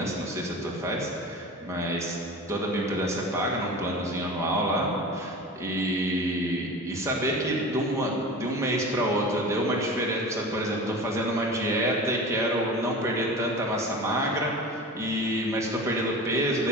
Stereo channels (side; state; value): both; normal; correlation 0.34